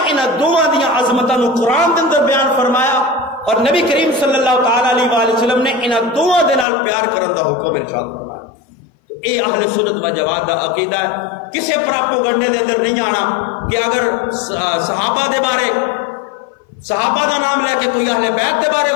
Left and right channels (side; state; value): right; drops out; at 6.7 s